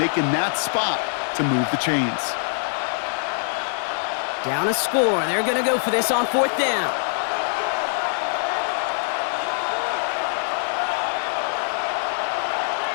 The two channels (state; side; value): silent; right; 63 dB below the other